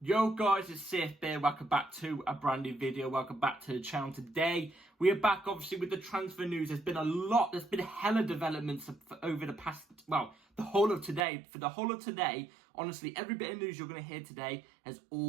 Yo guys, it's Safe here. Welcome back to a brand new video. Welcome back to the channel. Today we are back obviously with the transfer news. There's been a hella developments over the past, well, the whole of today. For the whole of today, honestly, every bit of news you're going to hear today has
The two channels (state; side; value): drops out; left; at 11.2 s